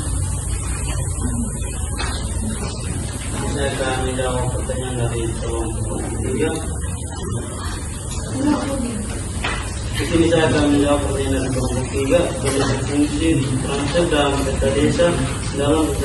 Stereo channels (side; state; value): both; identical; correlation 1.00